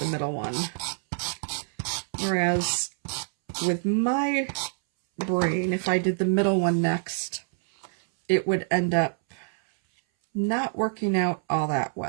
middle one. Whereas with my brain, if I did the middle one next, it would end up not working out all that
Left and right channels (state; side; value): silent; left; 61 dB below the other